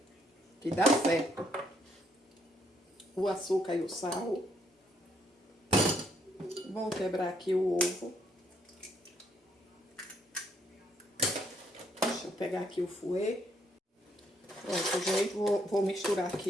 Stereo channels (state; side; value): normal; both; correlation 0.71